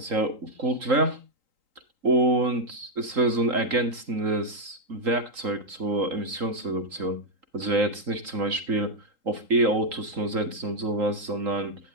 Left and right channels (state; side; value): late; left; 3.8 ms